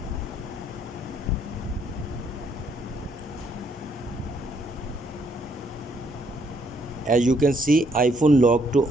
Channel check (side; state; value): both; normal; correlation 0.70